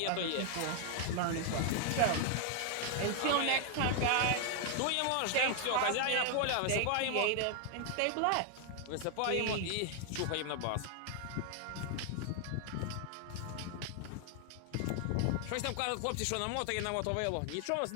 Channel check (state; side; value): different; both; correlation 0.00